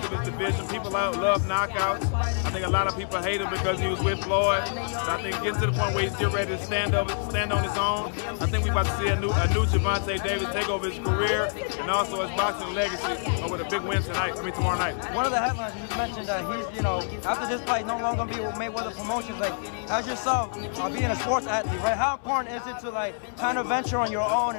of his division. People love knockouts. I think a lot of people hate him because he was with Floyd. So I think getting to the point where he's getting ready to stand on his own. I think we're about to see a new Gervonta Davis take over his career and also his boxing legacy with a big win tomorrow night. One of the headlines you mentioned that he's, after this fight, no longer be with Mayweather's promotions. Like, as yourself, being a sports athlete, right? How important is it to kind of venture on your own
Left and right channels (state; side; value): silent; right; 59 dB below the other